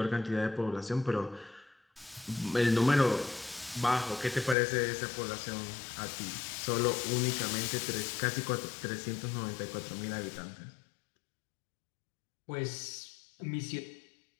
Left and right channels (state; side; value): drops out; right; at 4.5 s